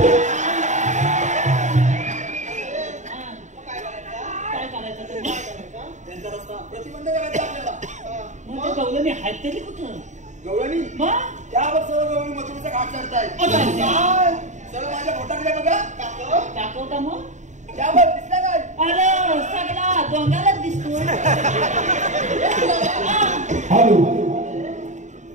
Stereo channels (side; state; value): left; late; 0.35 ms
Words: काय करायचं ते त्यांचा रस्ता प्रतिबंध करायचा आपल्याला. मग ते गवलं मी हात तरी कुठं गवळणी मग त्यावर सर्व गवळी मथुरेचा घाट चढतायत. काय? सर्व माझ्या पोटाकडे बघा. दाखवता मग त्यावर दिसला काय? अरे सगळा डोंगालाच दिसतो हॅलो